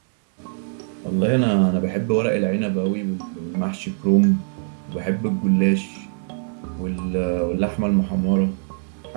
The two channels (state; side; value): silent; left; digital silence